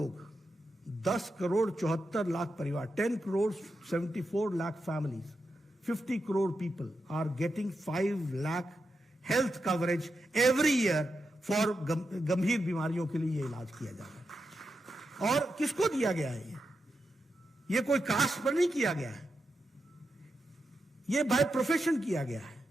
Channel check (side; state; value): both; normal; correlation 0.87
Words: 10 करोड़ 74 लाख परिवार, 10 crore 74 lakh families, 50 crore people are getting 5 lakh health coverage every year for गंभीर बीमारियों के लिए ये इलाज किया जा रहा है। और किसको दिया गया है? ये कोई कास्ट पर नहीं किया गया है, ये बाय प्रोफेशन किया गया है,